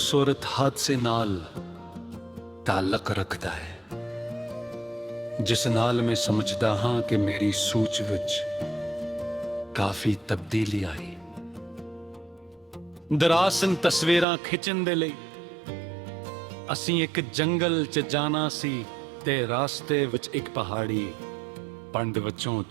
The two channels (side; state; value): left; drops out; at 14.2 s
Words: ਹਾਦਸੇ ਨਾਲ ਤਾਲੁਕ ਰੱਖਦਾ ਹੈ ਜਿਸ ਨਾਲ ਮੈਂ ਸਮਝਦਾ ਹਾਂ ਕਿ ਮੇਰੀ ਸੋਚ ਵਿੱਚ ਕਾਫੀ ਤਬਦੀਲੀ ਆਈ। ਦਰਾਸਨ ਤਸਵੀਰਾਂ ਖਿੱਚਣ ਦੇ ਲਈ ਅਸੀਂ ਇੱਕ ਜੰਗਲ 'ਚ ਜਾਣਾ ਸੀ ਤੇ ਰਾਸਤੇ ਵਿੱਚ ਇੱਕ ਪਹਾੜੀ ਪੰਡ ਵਿੱਚੋਂ